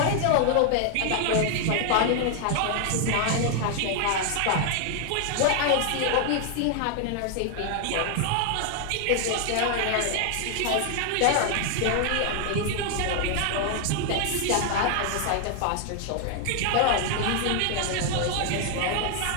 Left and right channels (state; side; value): different; both; correlation 0.00